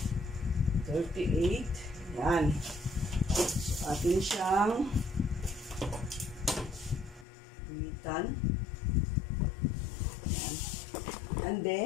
38. Yan. So, atin siyang guhitan. Yan. And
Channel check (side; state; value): right; drops out; at 7.2 s